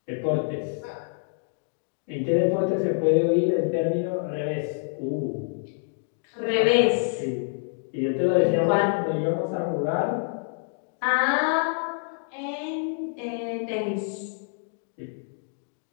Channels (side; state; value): right; silent; 60 dB below the other